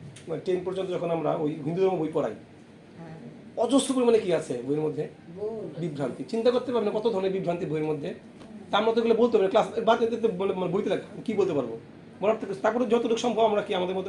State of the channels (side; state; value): both; identical; correlation 1.00